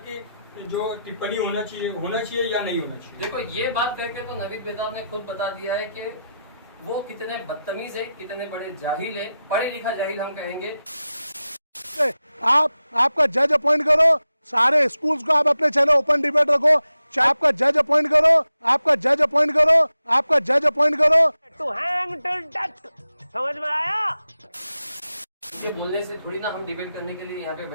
जो टिप्पणी होना चाहिए या नहीं होना चाहिए। देखो, ये बात करके तो नवीद बेताब ने खुद बता दिया है कि वो कितने बदतमीज है, कितने बड़े जाहिल है, पढ़े लिखा जाहिल हम कहेंगे। आपका जज अपॉइंट करो, सारे स्कूल्स को आप अपने चैनल ओपन डिबेट रखो, आपका जज अपॉइंट करो, आपका जज अपॉइंट करो, आपका जज अपॉइंट करो। टू हैंग टिल डेथ, समझ में आया? ये बोलने से थोड़ी ना हम डिबेट करने के लिए यहाँ पे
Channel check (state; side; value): inverted; both; correlation -0.90